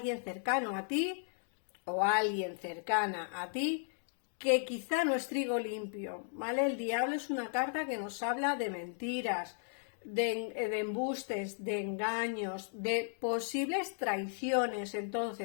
cercano a ti o alguien cercana a ti que quizá no es trigo limpio, ¿vale? El diablo es una carta que nos habla de mentiras, de embustes, de engaños, de posibles traiciones.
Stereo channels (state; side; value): silent; right; digital silence